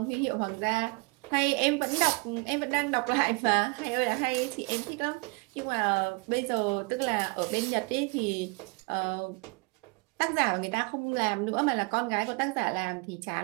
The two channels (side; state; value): left; quieter; 29.1 dB